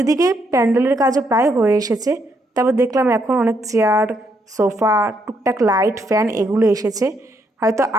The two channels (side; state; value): both; normal; correlation 0.75